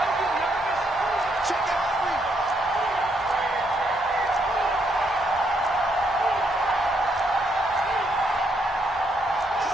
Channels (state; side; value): normal; both; correlation 0.75